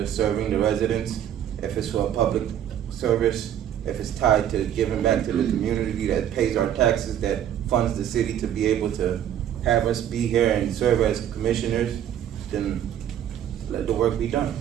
serving the residents, if it's for a public service, if it's tied to giving back to the community that pays our taxes, that funds the city to be able to have us be here and serve as commissioners, then let the work be done.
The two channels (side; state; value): left; quieter; 10.4 dB